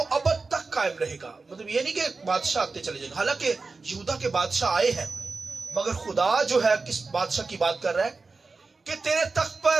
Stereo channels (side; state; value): left; quieter; 4.0 dB